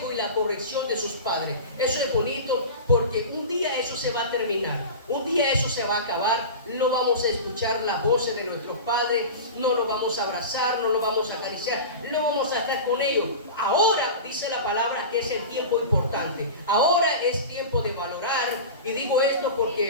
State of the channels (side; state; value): both; inverted; correlation -0.30